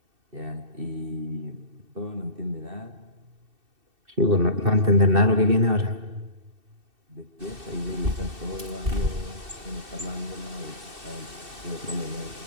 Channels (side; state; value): left; late; 2.7 ms